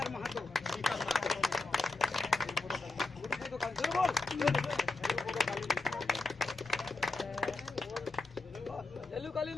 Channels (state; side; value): quieter; right; 3.5 dB